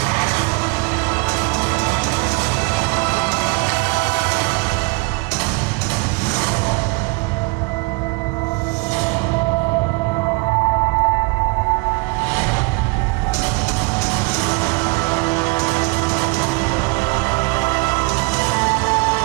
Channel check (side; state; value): left; quieter; 27.3 dB